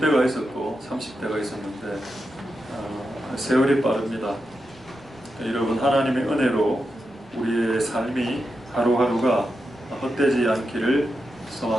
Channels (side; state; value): right; noise; rumble, 29 dB below the sound